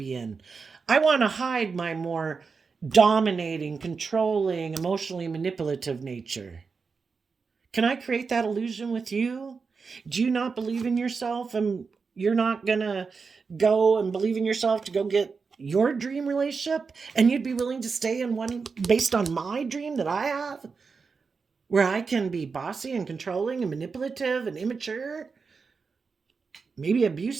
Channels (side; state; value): left; quieter; 5.0 dB